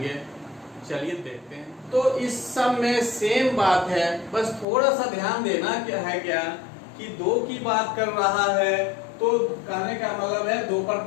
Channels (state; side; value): drops out; right; at 4.7 s